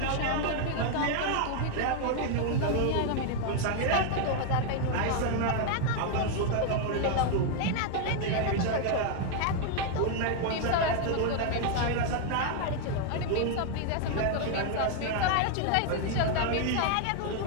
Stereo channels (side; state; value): both; different; correlation 0.00